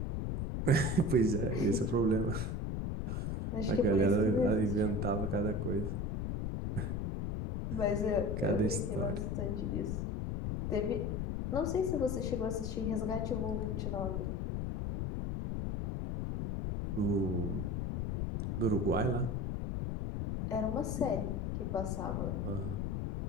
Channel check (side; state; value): left; noise; rumble, 1 dB below the sound